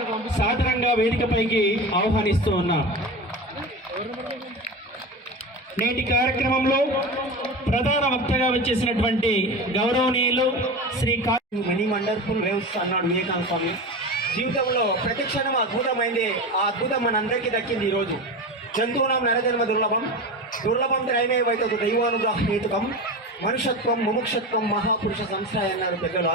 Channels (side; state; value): both; normal; correlation 0.26